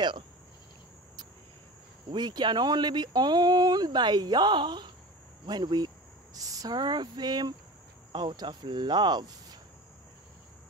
We can only be owned by Yah when we serve him out of love,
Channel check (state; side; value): normal; both; correlation 0.34